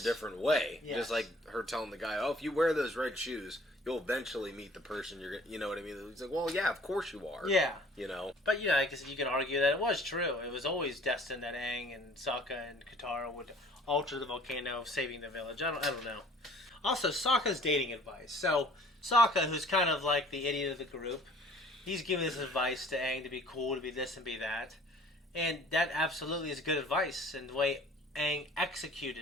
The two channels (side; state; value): both; normal; correlation 0.53